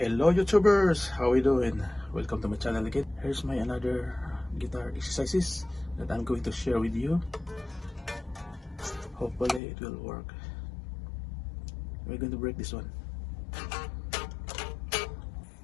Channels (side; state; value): right; drops out; at 9.6 s